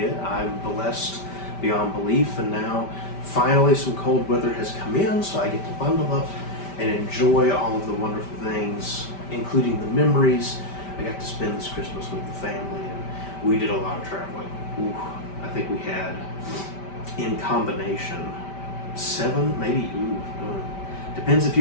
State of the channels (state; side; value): late; right; 5.1 ms